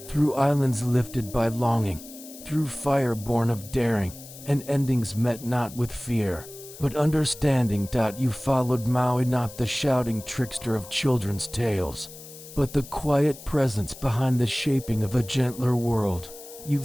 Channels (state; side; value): noise; left; hiss, 16 dB below the sound